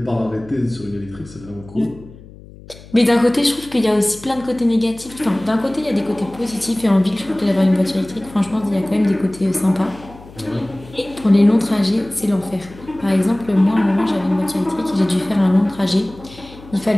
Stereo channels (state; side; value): noise; left; hum, 20 dB below the sound